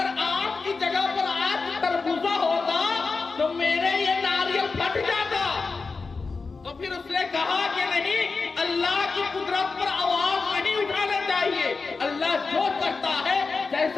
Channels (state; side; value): quieter; right; 4.3 dB